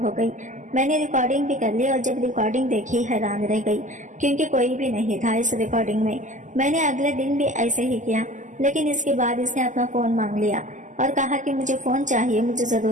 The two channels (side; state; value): left; late; 0.37 ms